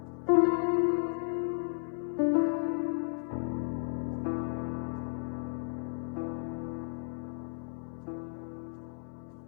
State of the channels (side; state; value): right; silent; digital silence